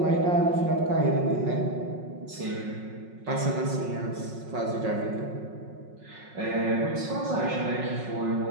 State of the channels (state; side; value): late; left; 5.5 ms